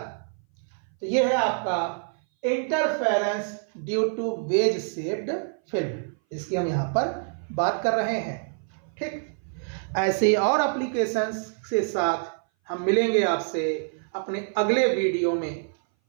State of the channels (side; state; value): left; silent; 58 dB below the other